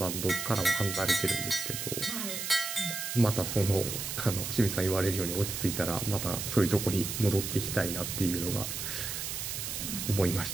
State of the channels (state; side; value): noise; right; hiss, 4 dB below the sound